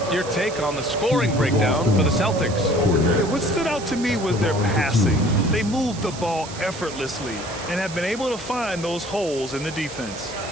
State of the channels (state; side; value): noise; right; hiss, 14 dB below the sound